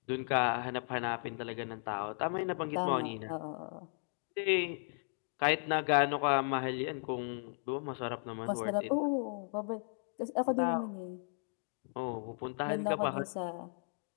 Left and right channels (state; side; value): silent; right; 54 dB below the other